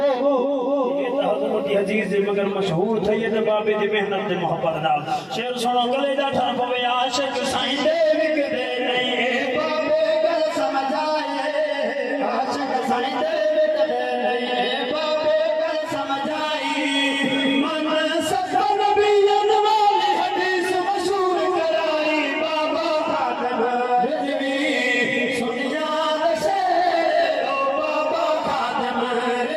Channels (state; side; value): identical; both; correlation 1.00